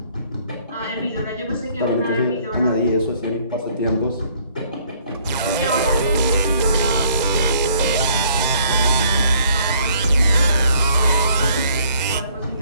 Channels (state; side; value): inverted; both; correlation -0.61